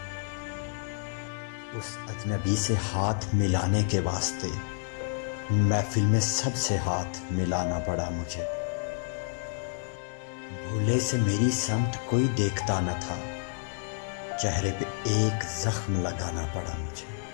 اس اجنبی سے ہاتھ ملانے کے واسطے محفل میں سب سے ہاتھ ملانا پڑا مجھے، بھولے سے میری سمت کوئی دیکھتا نہ تھا، چہرے پہ ایک زخم لگانا پڑا مجھے،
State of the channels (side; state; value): right; silent; digital silence